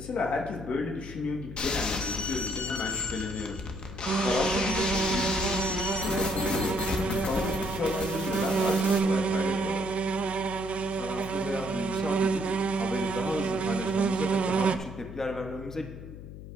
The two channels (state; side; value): noise; left; hum, 12 dB below the sound